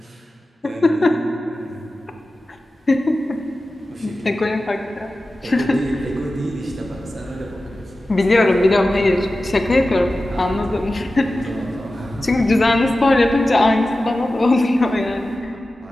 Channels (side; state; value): both; normal; correlation 0.94